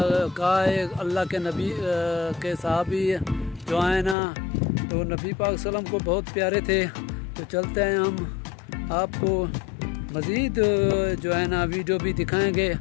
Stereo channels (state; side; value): drops out; right; at 4.2 s